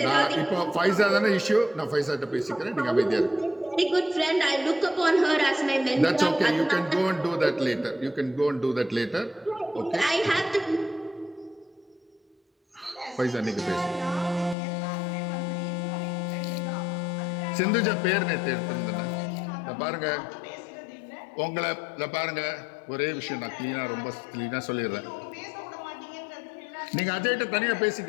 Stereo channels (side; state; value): right; drops out; at 14.6 s